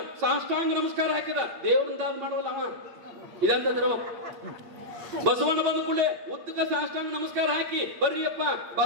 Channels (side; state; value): left; late; 8.6 ms